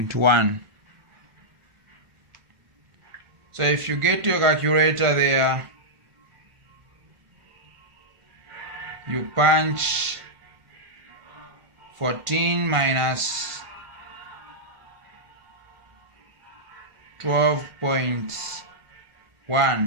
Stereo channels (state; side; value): late; left; 1.5 ms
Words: So if you get your calculator there, you punch 14 minus